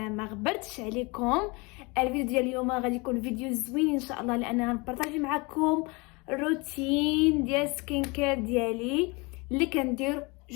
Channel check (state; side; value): quieter; right; 27.3 dB